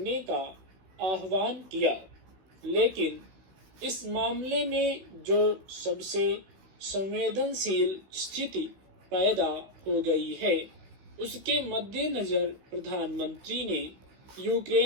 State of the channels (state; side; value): late; left; 16 ms